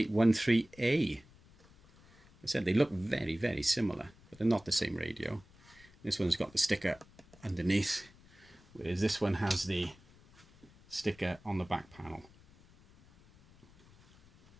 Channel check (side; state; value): left; noise; rumble, 26 dB below the sound